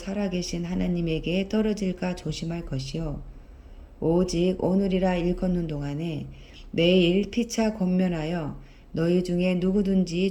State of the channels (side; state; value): both; identical; correlation 1.00